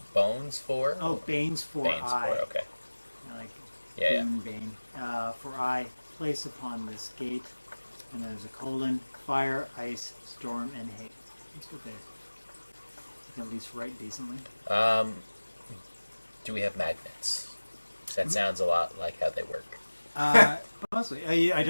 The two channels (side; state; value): both; inverted; correlation -1.00